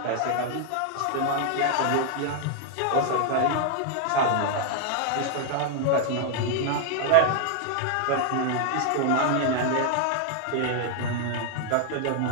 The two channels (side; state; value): both; different; correlation 0.00